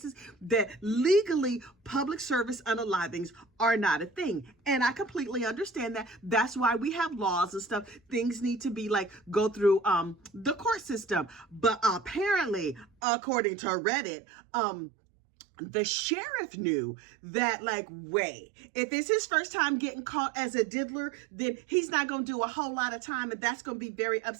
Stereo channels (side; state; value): left; drops out; at 12.9 s